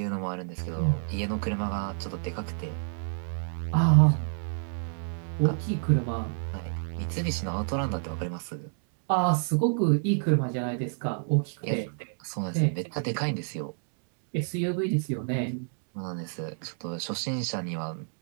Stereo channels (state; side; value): silent; left; digital silence